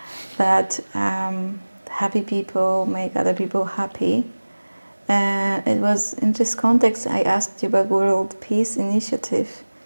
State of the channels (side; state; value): both; inverted; correlation -1.00